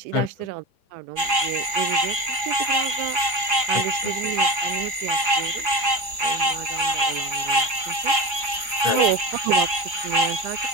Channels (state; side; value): late; left; 4.8 ms